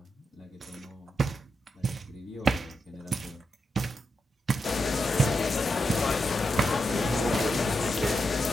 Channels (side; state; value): both; normal; correlation 0.85